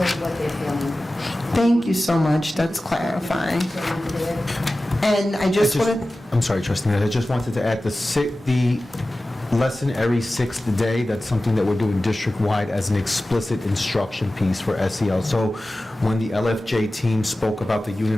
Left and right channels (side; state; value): both; normal; correlation 0.96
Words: what they're feeling. Thank you so much, that's clarifying. So we're there. And I just wanted, I'm sorry, Trustee, I just wanted to add the lesson every 6th day. That's something that we're doing district-wide as an explicit instruction piece for SEL. So when the LFJ team spoke about the